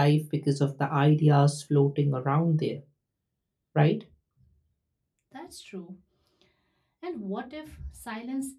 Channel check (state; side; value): identical; both; correlation 1.00